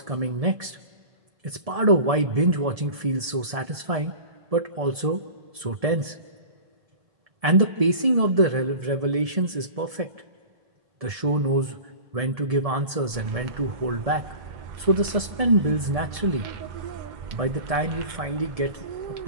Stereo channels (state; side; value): late; left; 1.7 ms